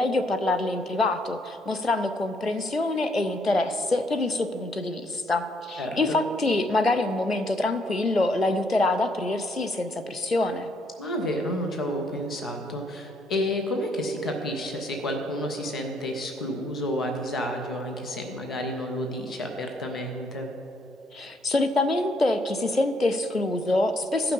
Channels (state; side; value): normal; both; correlation 0.70